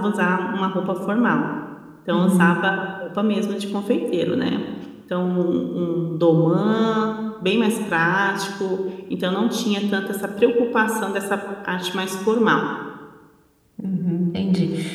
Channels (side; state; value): both; identical; correlation 1.00